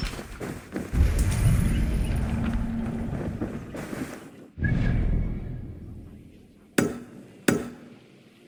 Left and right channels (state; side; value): identical; both; correlation 1.00